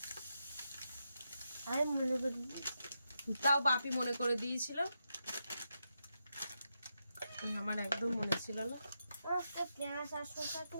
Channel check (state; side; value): inverted; both; correlation -0.86